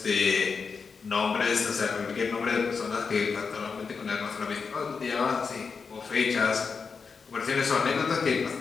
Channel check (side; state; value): right; quieter; 5.3 dB